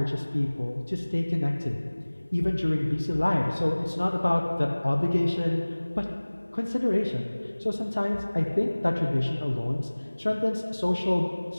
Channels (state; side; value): inverted; both; correlation -1.00